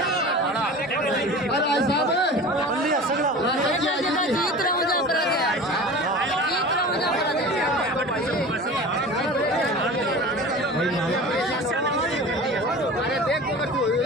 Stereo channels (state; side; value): normal; both; correlation 0.36